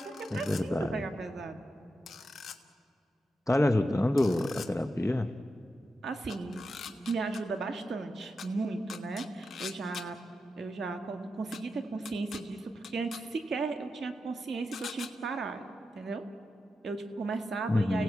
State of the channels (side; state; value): both; normal; correlation 0.88